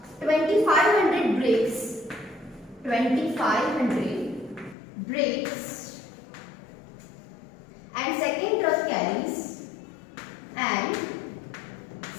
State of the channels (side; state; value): right; drops out; at 4.8 s